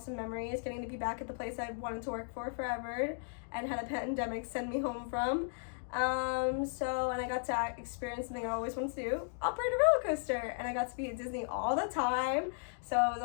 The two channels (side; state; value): right; silent; digital silence